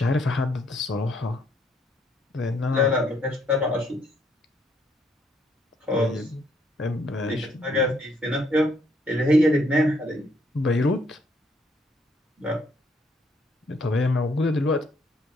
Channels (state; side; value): normal; both; correlation 0.69